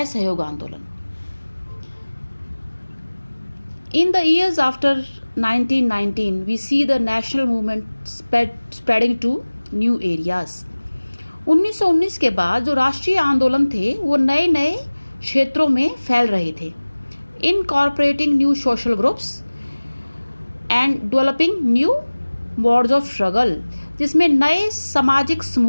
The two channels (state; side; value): inverted; both; correlation -1.00